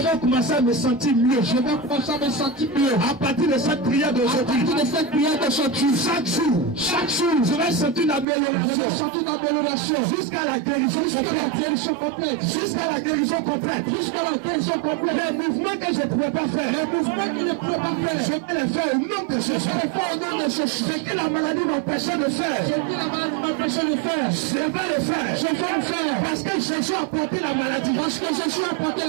commencer à me sentir mieux. je vais commencer à me sentir mieux. À partir de cette prière À d'aujourd'hui, partir de cette prière d'aujourd'hui, chaque jour, je vais sentir une je vais amélioration sentir une amélioration jusqu'à la guérison jusqu'à la complète. guérison complète. Jusqu'à la guérison complète. Jusqu'à la guérison complète. Les mouvements que je ne pouvais pas faire, Les mouvements qu'il ne pouvait pas faire, je vais les faire au nom de Jésus. je vais faire au nom de Jésus. Ce que la maladie m'empêchait de faire, Ce que la maladie m'empêchait de faire, je vais le faire. je vais le faire. Parce que Jésus a porté la maladie. Parce que Jésus Jésus a porté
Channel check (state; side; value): drops out; left; at 8.2 s